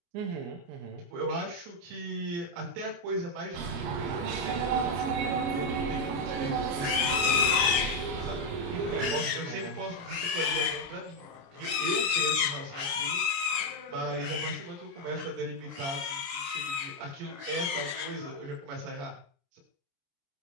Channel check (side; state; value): left; late; 29 ms